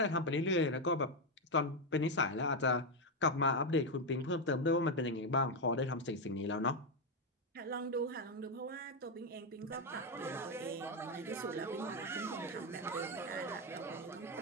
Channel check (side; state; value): both; normal; correlation 0.05